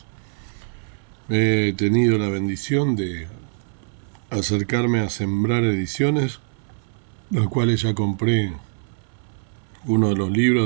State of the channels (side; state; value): left; silent; 63 dB below the other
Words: He tenido la bendición de acercarme a Sembrar Ediciones, los cuales ya compré uno de los